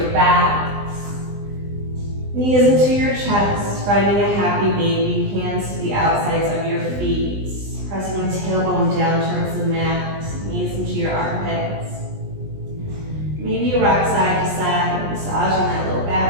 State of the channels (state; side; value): late; left; 20 ms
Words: back. Knees into your chest, finding a happy baby. Hands to the outsides of your feet. Pressing the tailbone down towards the mat. Knees into your armpits. Maybe you rock side to side, massaging that low